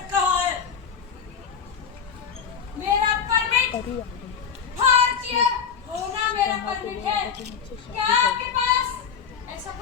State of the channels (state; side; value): quieter; right; 7.0 dB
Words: कहाँ है? मेरा परमिट भारतीय होना मेरा परमिट है। क्या आपके पास ऐसा